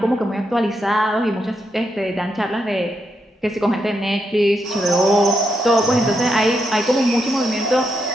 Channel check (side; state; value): both; normal; correlation 0.82